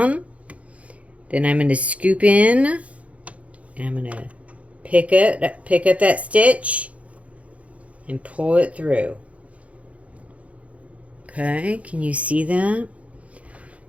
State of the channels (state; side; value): late; left; 0.065 ms